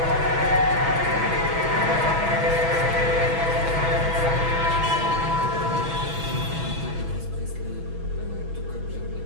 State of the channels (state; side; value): late; left; 6.1 ms